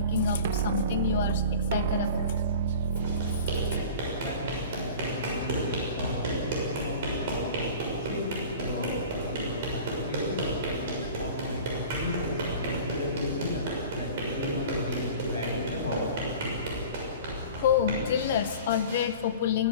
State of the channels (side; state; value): both; inverted; correlation -0.40